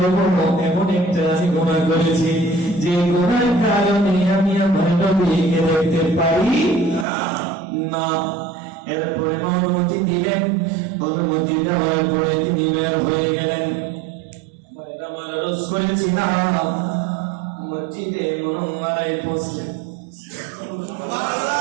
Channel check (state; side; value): drops out; left; at 7.1 s